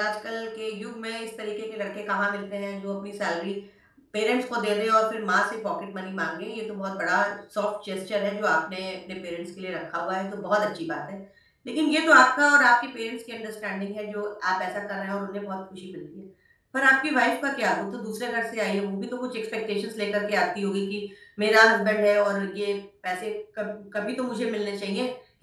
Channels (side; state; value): both; identical; correlation 1.00